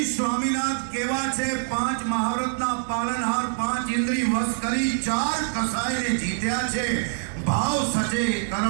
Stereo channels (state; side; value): silent; left; digital silence